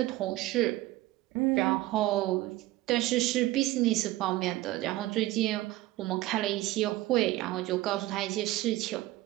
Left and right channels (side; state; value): left; quieter; 17.0 dB